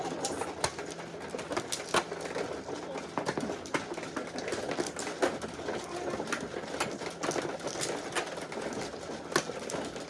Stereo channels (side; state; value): both; identical; correlation 1.00